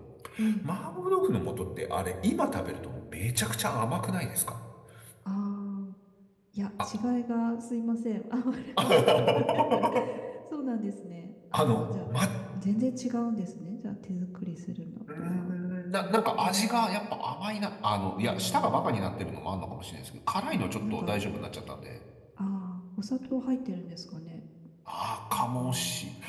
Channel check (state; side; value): identical; both; correlation 1.00